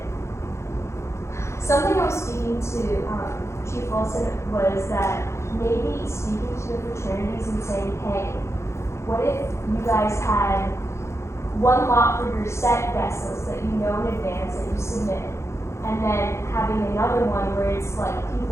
something I was speaking to Chief Wilson was that maybe speaking to the fraternities and saying, hey, what if you guys had one lot for your set guest list that you know in advance that you submit, and then having another one where it's like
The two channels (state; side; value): late; right; 0.13 ms